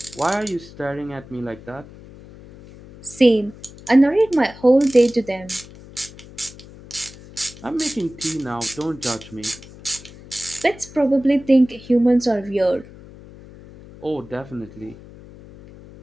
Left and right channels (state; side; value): noise; left; hum, 19 dB below the sound